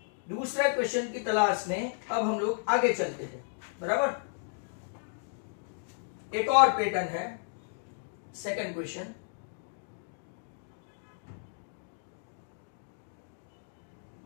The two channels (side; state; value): right; silent; digital silence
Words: दूसरा क्वेश्चन की तलाश में अब हम लोग आगे चलते हैं, बराबर। एक और पैटर्न है, सेकंड क्वेश्चन।